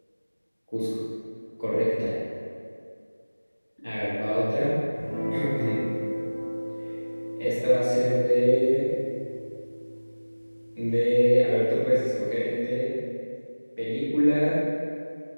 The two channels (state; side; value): inverted; both; correlation -1.00